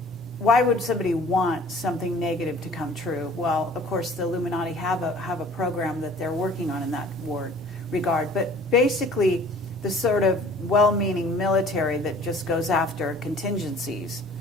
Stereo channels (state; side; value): normal; both; correlation 0.50